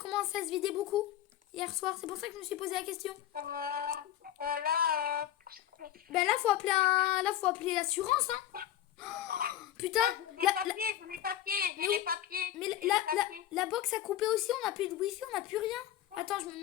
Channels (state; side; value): quieter; right; 11.9 dB